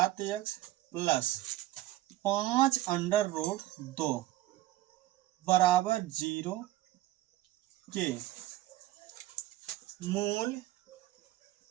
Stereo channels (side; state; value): left; quieter; 15.8 dB